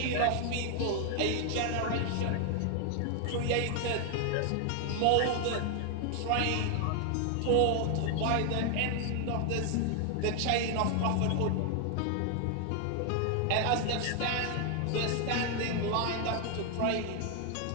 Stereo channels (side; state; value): both; different; correlation 0.00